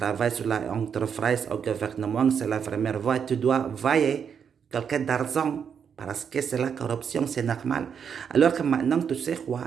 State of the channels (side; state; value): left; quieter; 7.2 dB